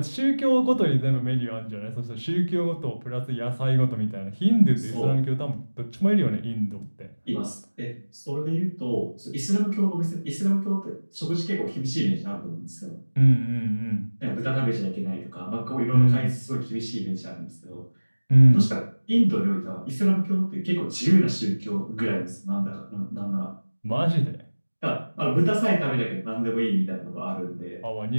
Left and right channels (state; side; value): inverted; both; correlation -1.00